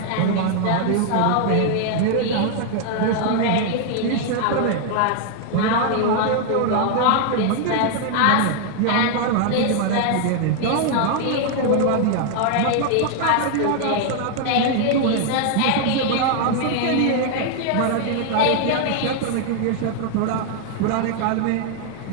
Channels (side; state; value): both; different; correlation 0.00